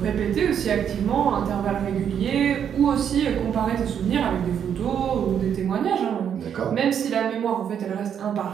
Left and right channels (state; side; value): quieter; left; 8.5 dB